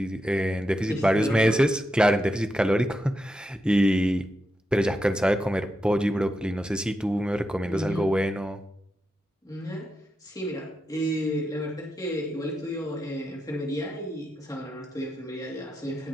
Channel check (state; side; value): normal; both; correlation 0.86